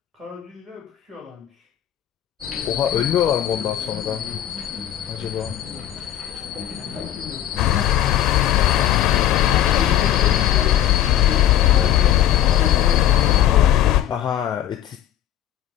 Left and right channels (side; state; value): right; quieter; 11.5 dB